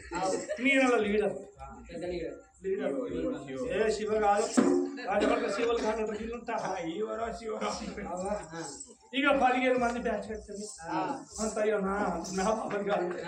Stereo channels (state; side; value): identical; both; correlation 1.00